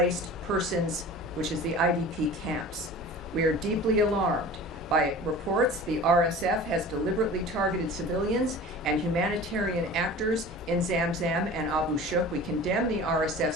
persons, which is the IDP camps. We are deeply alarmed by reports the RSF has deliberately targeted civilians and humanitarian actors in Zamzam and Abu Shuk. We condemn the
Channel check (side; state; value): both; normal; correlation 0.39